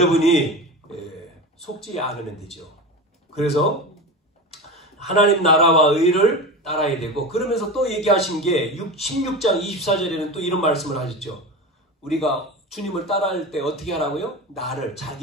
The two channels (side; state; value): both; normal; correlation 0.27